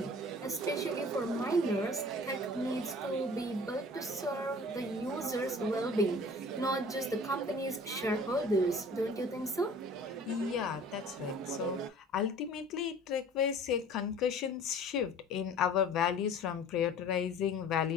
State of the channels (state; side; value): normal; both; correlation 0.46